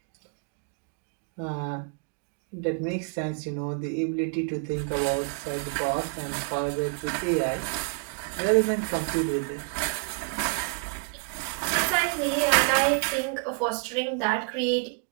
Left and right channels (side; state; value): left; quieter; 39.1 dB